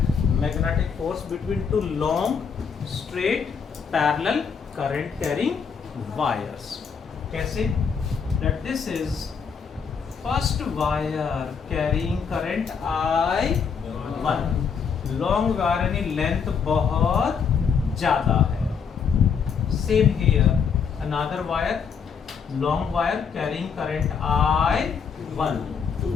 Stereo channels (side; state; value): right; quieter; 6.4 dB